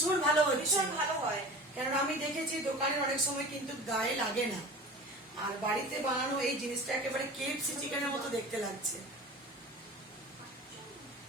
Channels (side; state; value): both; normal; correlation 0.37